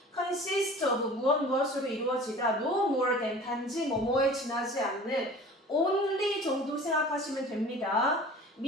consist of, 무엇으로 이루어지다, no more than, 단지 뭐뭐에 지나지 않는, only 정도 생각하시면 됩니다.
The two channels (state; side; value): normal; both; correlation 0.42